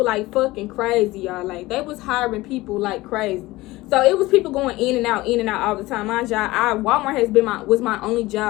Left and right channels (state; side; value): quieter; right; 19.2 dB